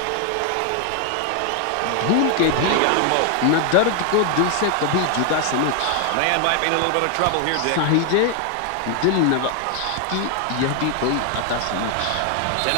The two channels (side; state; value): both; different; correlation 0.00